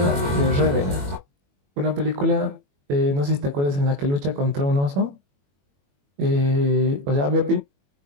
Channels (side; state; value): left; late; 21 ms